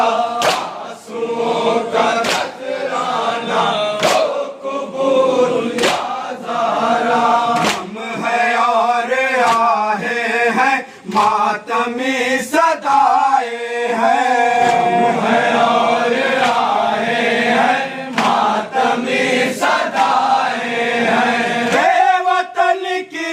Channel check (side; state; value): both; identical; correlation 1.00